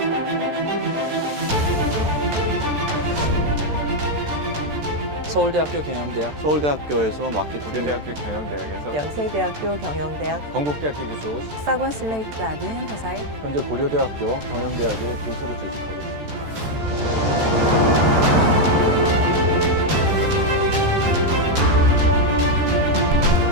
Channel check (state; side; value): late; left; 13 ms